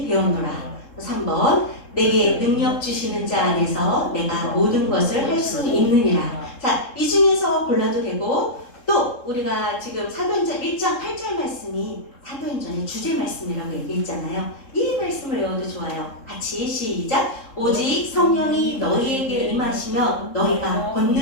되었노라. 3번 내게 능력 주시는 자 안에서 내가 모든 것을 할 수 있느니라. 자, 이 중에서 골라도 되고 또 우리가 지금 사도행전 1장 8절 말씀이 사도행전의 주제 말씀이라고 얘기했잖아요. 이 말씀을 외워도 좋아요. 같이 시작! 오직 성령이 너희에게 임하시며 너희가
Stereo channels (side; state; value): right; late; 3.7 ms